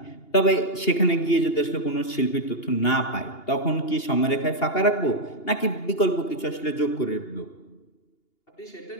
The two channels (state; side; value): late; right; 2.8 ms